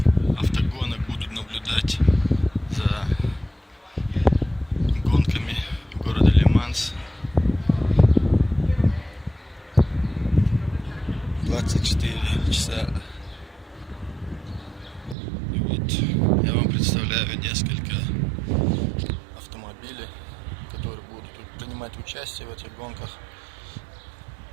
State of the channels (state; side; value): drops out; left; at 15.2 s